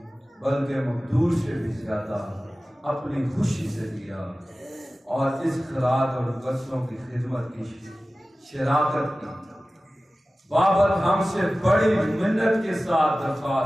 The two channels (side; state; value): both; normal; correlation 0.96